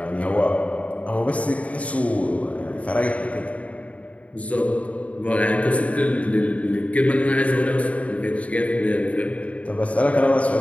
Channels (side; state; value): right; late; 0.067 ms